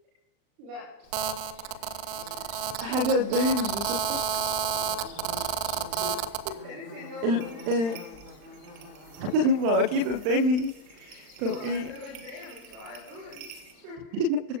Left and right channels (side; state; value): left; late; 40 ms